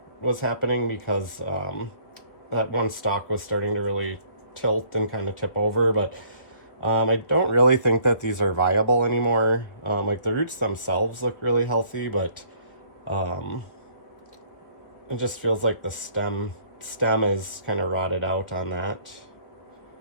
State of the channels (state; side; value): late; right; 1.8 ms